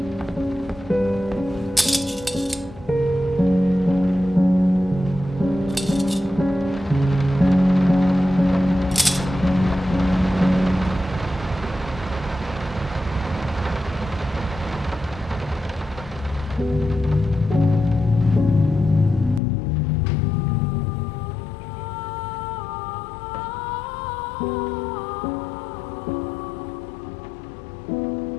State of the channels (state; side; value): drops out; right; at 19.4 s